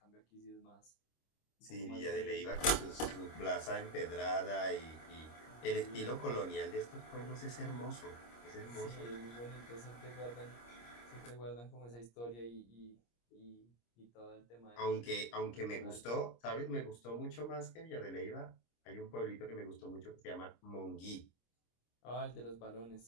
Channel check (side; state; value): right; late; 25 ms